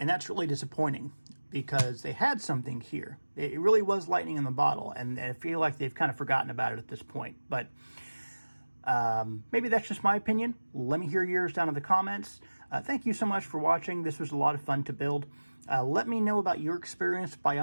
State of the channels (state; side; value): inverted; both; correlation -1.00